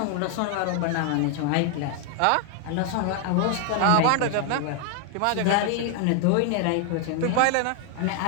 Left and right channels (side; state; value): both; different; correlation 0.00